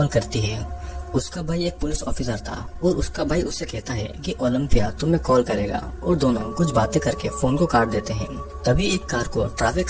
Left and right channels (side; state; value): both; identical; correlation 1.00